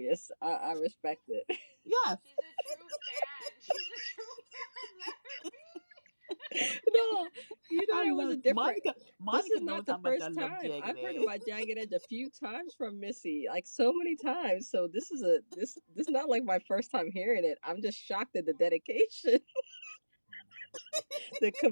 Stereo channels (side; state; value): both; inverted; correlation -1.00